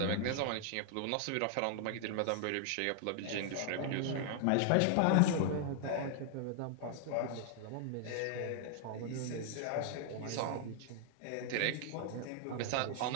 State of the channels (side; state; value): both; different; correlation 0.00